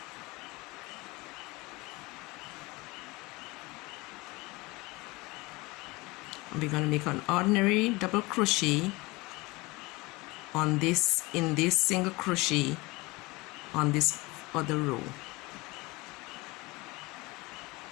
We're going to make an ordinary double crochet on this, in this single crochet on this other row.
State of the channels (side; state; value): right; quieter; 23.2 dB